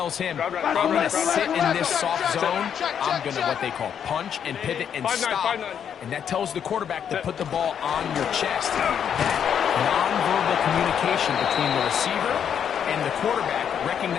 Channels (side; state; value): right; quieter; 8.3 dB